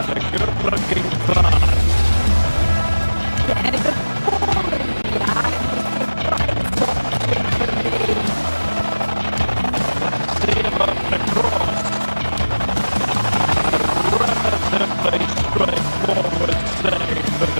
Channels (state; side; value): inverted; both; correlation -1.00